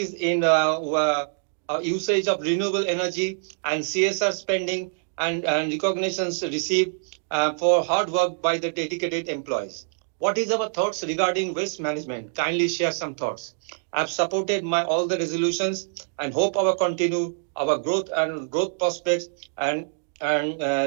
in usage of renewable energy and CSR spending and recognitions received for hard work by the dedicated employees. What is our thoughts regarding waste management? Kindly share some thoughts. I've supported all the resolutions and hope our growth prospects and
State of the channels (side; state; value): left; silent; digital silence